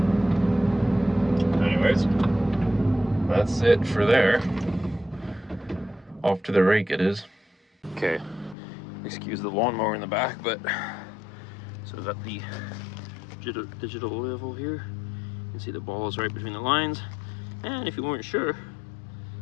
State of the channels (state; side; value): drops out; right; at 8.6 s